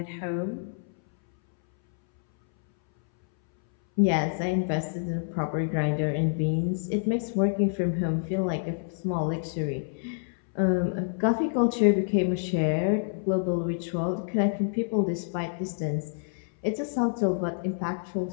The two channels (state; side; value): silent; right; 60 dB below the other